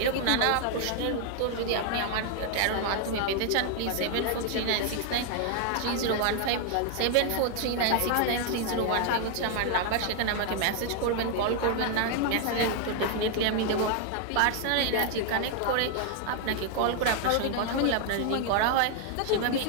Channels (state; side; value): different; both; correlation 0.00